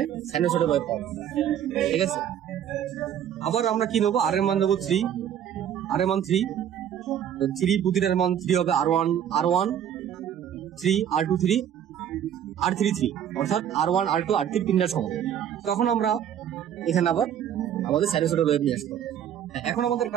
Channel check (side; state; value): left; quieter; 9.7 dB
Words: সাইনোসয়েডের ওয়েভ পাবো, ঠিক আছে। আবার আমরা কি নেবো, আর এর মান নেবো 3, আর এর মান 3, প্রতিটার মান 3 হবে। R1 3, R2 3, R3 3, অর্থাৎ R1 R2 R3 তিনটার সমান। তখন আমরা এখানে আবার আমাদের সাইনোসয়েডের ওয়েভ নিয়ে আসবো। এখন আমাদের